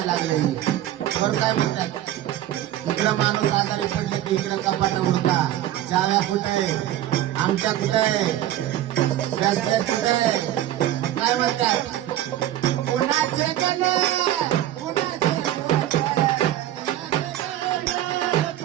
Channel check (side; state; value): left; quieter; 13.0 dB